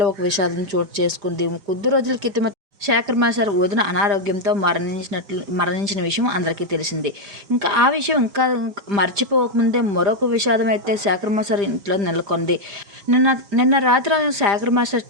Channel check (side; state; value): left; late; 5.0 ms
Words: ఒక విషాదం చోటు చేసుకుంది. కొద్ది రోజుల క్రితమే శేఖర్ మాస్టర్ వదిన అనారోగ్యంతో మరణించిన విషయం అందరికీ తెలిసిందే. ఇంకా ఆ విషయం ఇంకా మర్చిపోకముందే మరొక విషాదం అయితే శేఖర్ మాస్టర్ ఇంట్లో నెలకొంది. నిన్న నిన్న రాత్రి శేఖర్ మాస్టర్